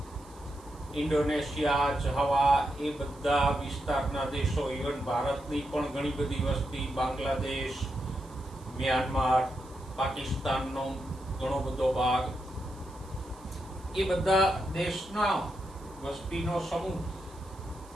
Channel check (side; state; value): right; noise; hiss, 25 dB below the sound